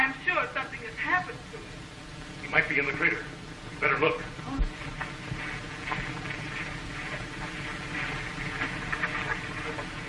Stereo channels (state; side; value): identical; both; correlation 1.00